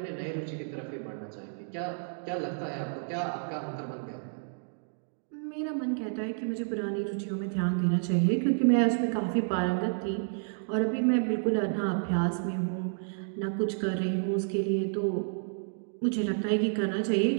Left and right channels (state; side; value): silent; left; digital silence